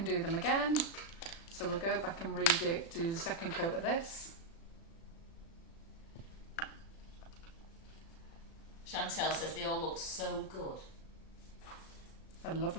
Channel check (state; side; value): late; right; 36 ms